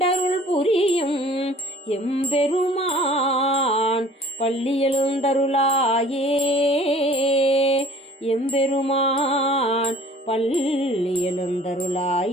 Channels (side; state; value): both; normal; correlation 0.50